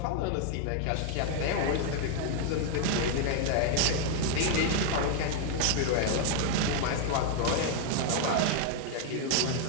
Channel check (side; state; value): both; different; correlation 0.00